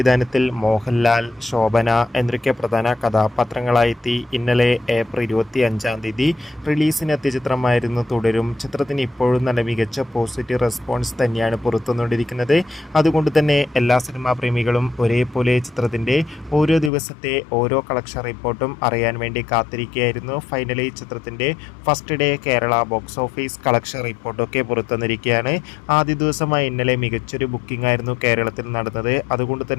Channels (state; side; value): drops out; right; at 16.9 s